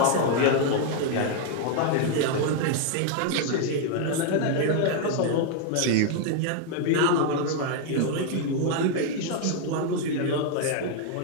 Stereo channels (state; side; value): different; both; correlation 0.00